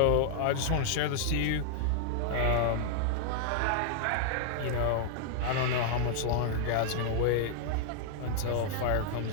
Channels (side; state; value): both; different; correlation -0.01